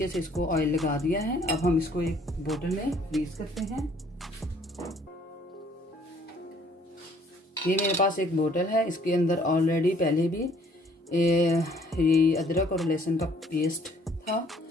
से इसको ऑयल लगा दिया है। अब हम इसको एक बोतल में फ्रीज करते हैं। ये मेरे पास एक बोतल है, इसके अंदर ऑलरेडी पहले भी ये अदरक और लहसुन का पेस्ट था,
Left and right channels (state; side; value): normal; both; correlation 0.60